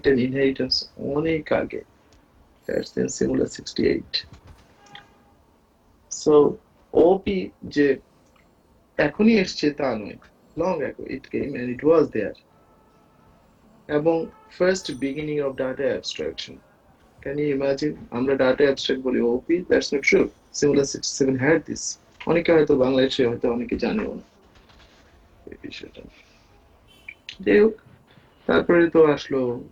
and inheritance অনেক আগে, that's in Simula 68. So OP যে এখনই এসছে তা নয়, long ago it came and it was there, এবং first beginning of data abstraction. Can you imagine আমরা data abstract বলি OP? That's not true. Simula 67 had this. অনেকে হয়তো বাংলাদেশে হয়তো অনেকে জানেও না এই বিষয়টা। যাই হোক, তারপরে তো আসলো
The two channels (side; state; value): both; identical; correlation 1.00